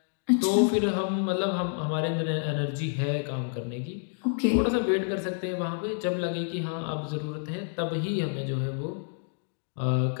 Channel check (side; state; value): right; silent; digital silence